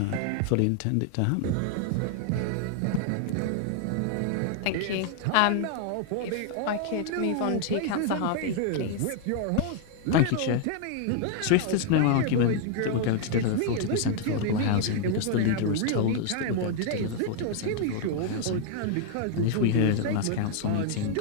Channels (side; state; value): both; different; correlation 0.00